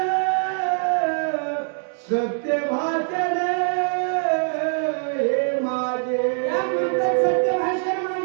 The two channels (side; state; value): left; silent; 63 dB below the other